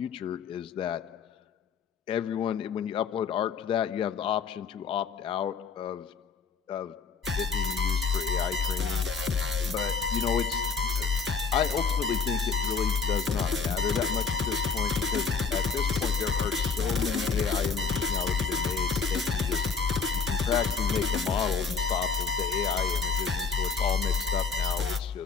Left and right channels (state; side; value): quieter; right; 5.2 dB